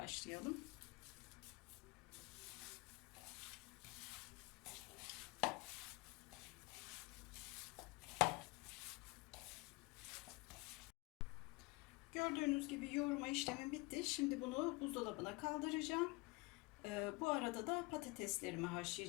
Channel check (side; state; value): right; quieter; 24.5 dB